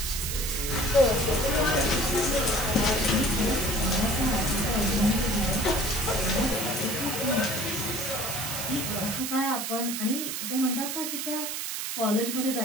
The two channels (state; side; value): noise; right; hiss, 3 dB below the sound